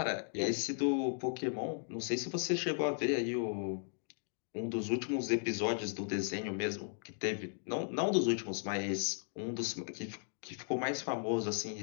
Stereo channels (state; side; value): silent; right; digital silence